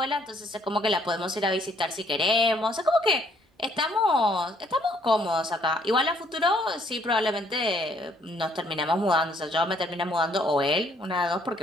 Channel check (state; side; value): normal; both; correlation 0.66